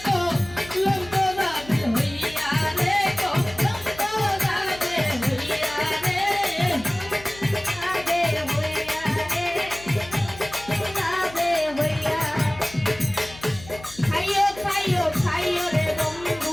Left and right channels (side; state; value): left; noise; hum, 18 dB below the sound